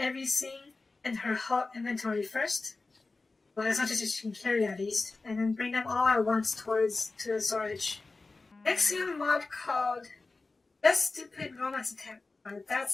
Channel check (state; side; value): quieter; right; 3.6 dB